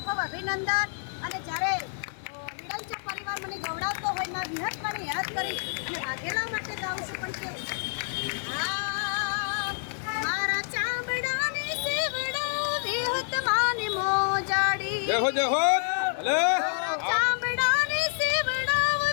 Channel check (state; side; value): silent; right; digital silence